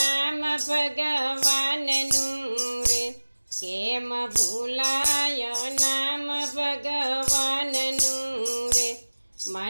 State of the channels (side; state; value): both; inverted; correlation -1.00